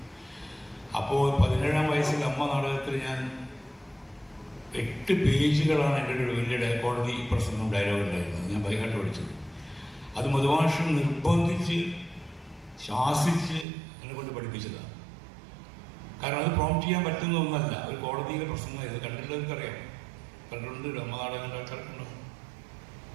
അപ്പോൾ 17ാം വയസ്സിൽ അമ്മ നാടകത്തിൽ ഞാൻ 8 പേജുകളാണ് എൻ്റെ ഒരു വലിയ കോടതി പ്രസംഗം ഡയലോഗ് ഉണ്ടായിരുന്നത്, ഞാൻ ബൈഹാർട്ട് പഠിച്ചത്. അത് മധുമാഷ് നിർബന്ധിച്ച് ശാസിച്ച് എന്നെ കൊണ്ട് പഠിപ്പിച്ചതാണ്. കാരണം അത് പ്രോംപ്റ്റ് ചെയ്യാൻ പറ്റുന്ന ഒന്നല്ല, ഒരു കോടതിയിലെ പ്രസംഗമായിരുന്നു. കണ്ടിട്ടുള്ളവർക്കറിയാം, കണ്ടിട്ടുണ്ട്, അമ്മ നാടകം ആൾക്കാർക്കുണ്ടോ.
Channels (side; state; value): left; drops out; at 13.7 s